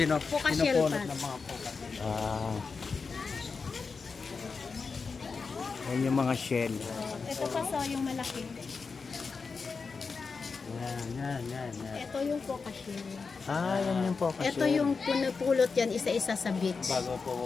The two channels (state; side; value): quieter; right; 4.8 dB